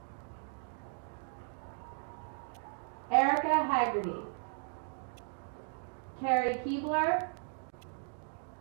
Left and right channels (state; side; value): silent; left; 54 dB below the other